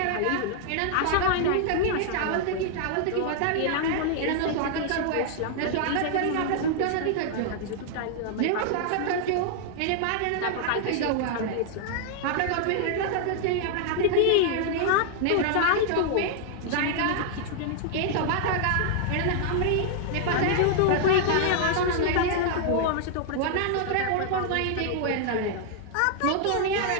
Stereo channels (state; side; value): different; both; correlation 0.00